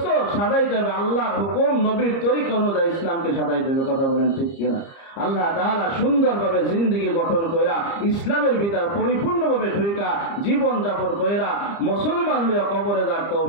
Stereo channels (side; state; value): right; late; 30 ms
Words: সাজাইতে হবে আল্লাহর হুকুম, নবীর তরিকা অনুযায়ী ইসলামকে সাজাইতে হবে, কথা বলেন ঠিক কিনা? আল্লাহ তাআলা সুন্দরভাবে জিন্দেগি গঠন কইরা, ইসলামের ভিতর পরিপূর্ণভাবে ঢুইকা জীবন যাপন কইরা মুসলমান হইয়া কবরে যাওয়ার